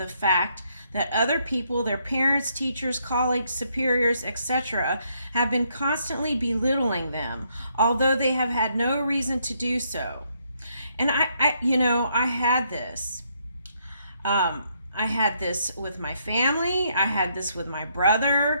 fact that other people, their parents, teachers, colleagues, superiors, etc., have been constantly belittling them, although they have had no reason to do so. And I had this. I had this with my family. I had this with my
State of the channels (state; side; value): inverted; both; correlation -0.73